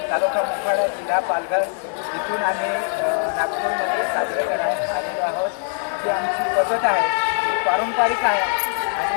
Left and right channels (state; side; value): silent; right; 56 dB below the other